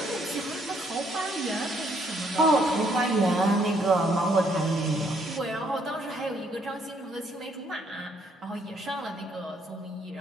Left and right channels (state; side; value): normal; both; correlation 0.68